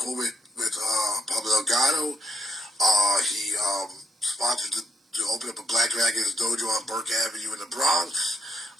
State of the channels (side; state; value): both; normal; correlation 0.77